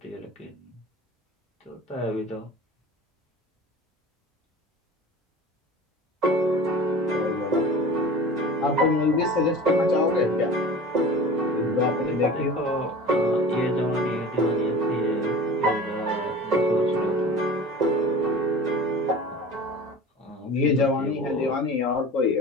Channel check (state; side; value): normal; both; correlation 0.38